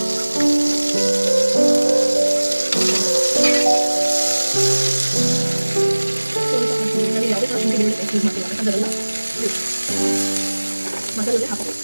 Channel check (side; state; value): both; inverted; correlation -1.00